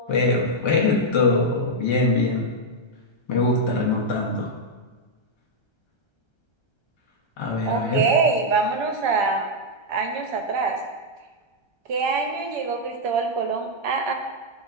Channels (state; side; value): late; right; 1.3 ms